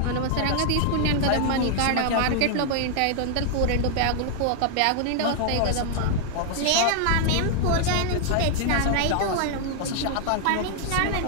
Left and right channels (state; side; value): different; both; correlation 0.00